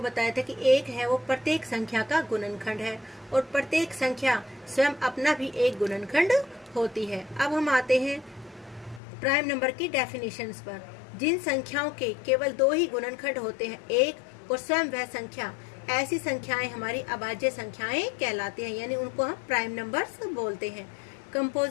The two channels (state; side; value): drops out; right; at 9.0 s